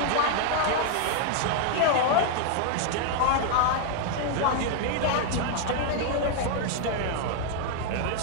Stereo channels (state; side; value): different; both; correlation 0.00